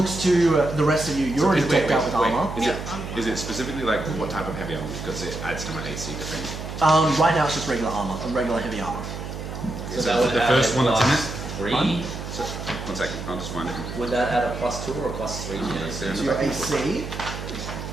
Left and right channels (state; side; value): noise; right; hum, 8 dB below the sound